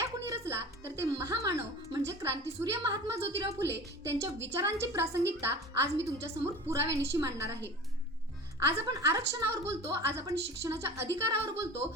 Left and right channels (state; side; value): normal; both; correlation 0.37